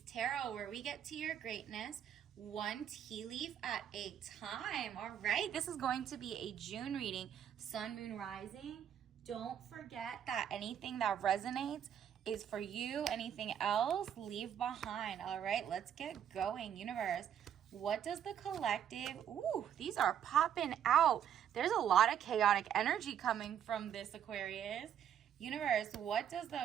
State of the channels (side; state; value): left; quieter; 9.4 dB